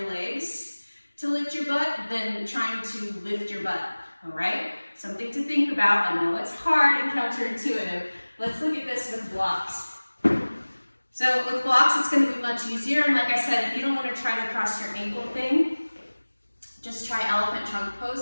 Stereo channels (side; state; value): both; inverted; correlation -1.00